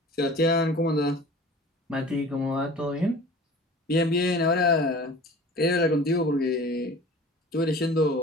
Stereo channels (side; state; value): both; normal; correlation 0.42